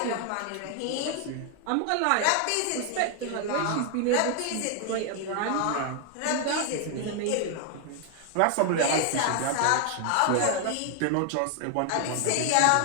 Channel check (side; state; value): both; different; correlation 0.00